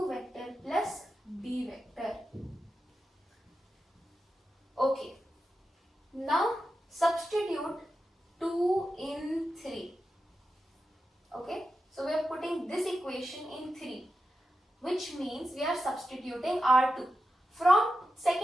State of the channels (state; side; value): normal; both; correlation 0.90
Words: vector plus D vector. Okay. Now substitute 2 in 3. Okay. So we are putting this equation in 3, which means we are substituting R2. From